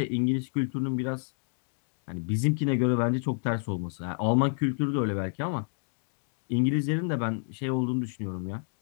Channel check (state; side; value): silent; right; digital silence